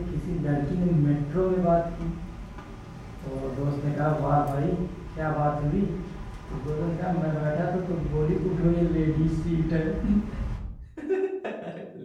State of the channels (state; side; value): identical; both; correlation 1.00